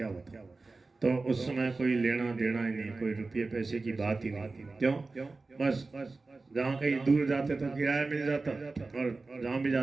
होता। तो उस समय कोई लेना देना ही नहीं, कोई रुपये पैसे की बात ही नहीं। क्यों? बस जहाँ कहीं दूर जाते तो किराया मिल जाता, और जहाँ भी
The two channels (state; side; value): quieter; left; 3.7 dB